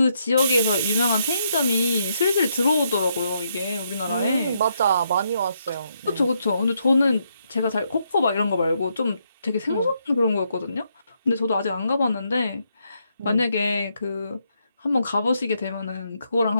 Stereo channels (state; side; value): inverted; both; correlation -0.77